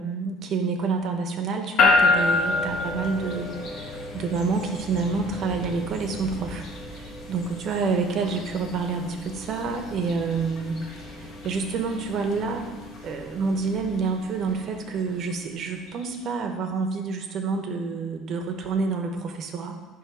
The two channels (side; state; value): both; normal; correlation 0.51